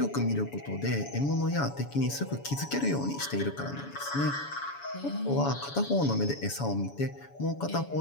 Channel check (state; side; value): late; right; 7.1 ms